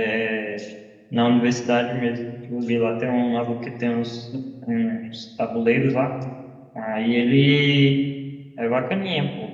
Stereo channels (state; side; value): identical; both; correlation 1.00